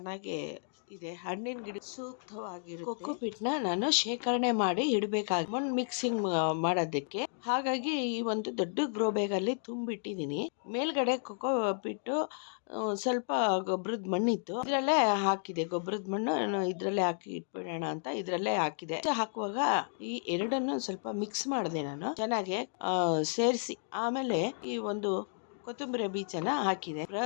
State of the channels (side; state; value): right; silent; digital silence